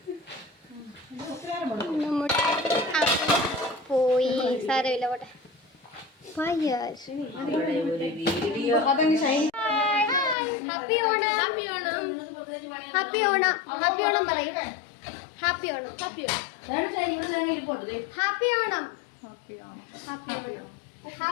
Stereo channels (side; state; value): right; drops out; at 10.4 s